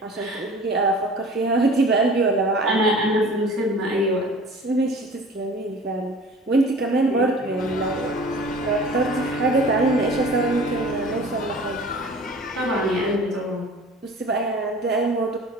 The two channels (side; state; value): both; normal; correlation 0.43